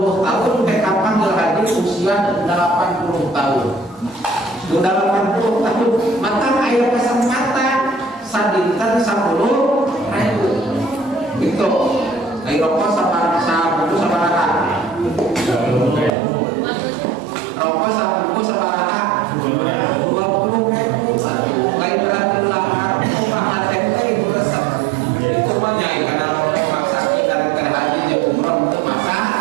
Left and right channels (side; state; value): left; drops out; at 16.1 s